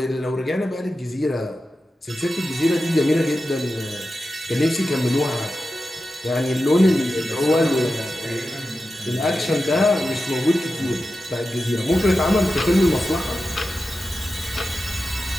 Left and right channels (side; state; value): both; normal; correlation 0.92